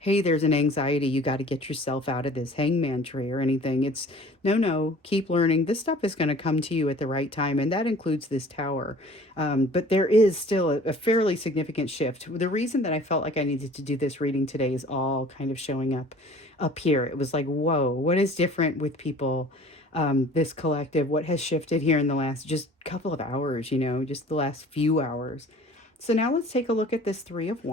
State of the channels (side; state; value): both; normal; correlation 0.48